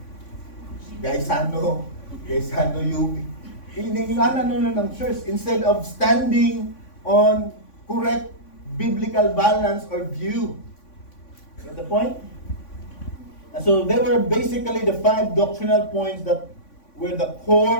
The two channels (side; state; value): right; late; 3.5 ms